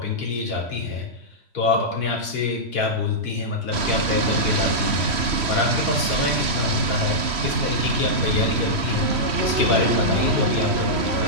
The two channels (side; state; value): left; late; 3.1 ms